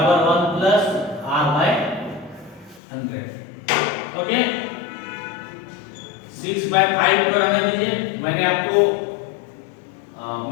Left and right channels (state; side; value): drops out; right; at 2.8 s